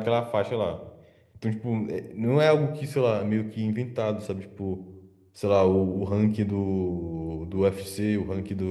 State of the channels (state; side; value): identical; both; correlation 1.00